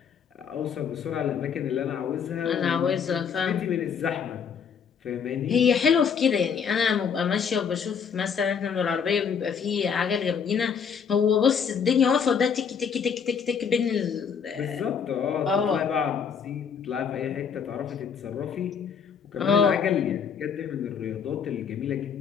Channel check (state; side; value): quieter; right; 6.9 dB